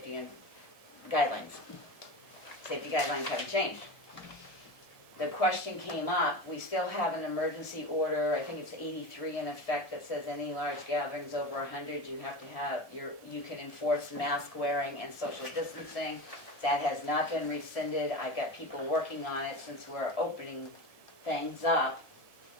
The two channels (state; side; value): late; right; 1.7 ms